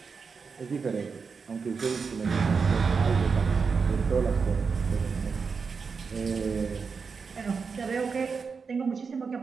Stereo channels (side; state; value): left; quieter; 5.3 dB